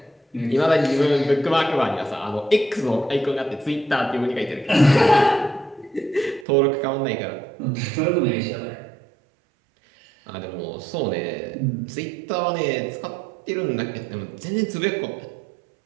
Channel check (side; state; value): left; drops out; at 6.5 s